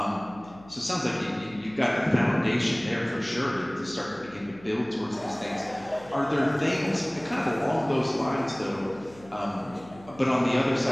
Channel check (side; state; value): left; noise; hum, 22 dB below the sound